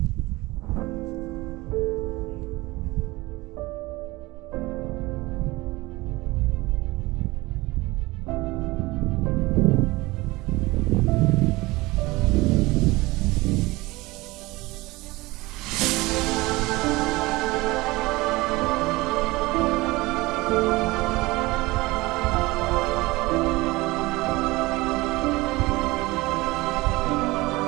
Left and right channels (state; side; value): quieter; left; 21.3 dB